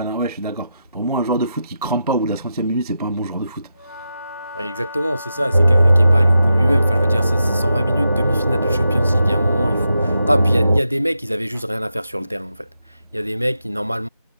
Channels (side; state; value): both; inverted; correlation -0.87